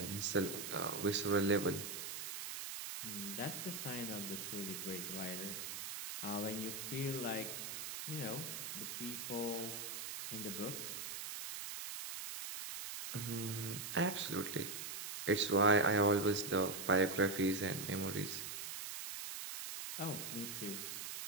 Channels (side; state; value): right; noise; hiss, 6 dB below the sound